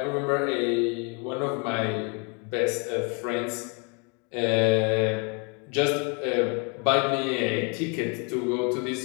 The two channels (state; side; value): quieter; right; 33.8 dB